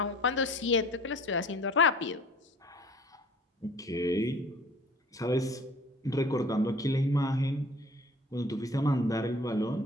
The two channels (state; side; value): normal; both; correlation 0.48